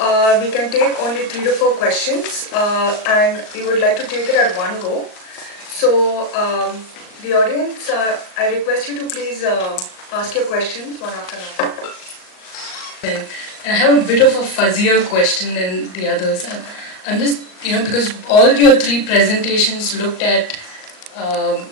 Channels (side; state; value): right; late; 38 ms